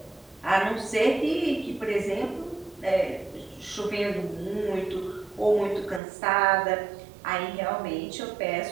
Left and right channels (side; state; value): left; drops out; at 6.0 s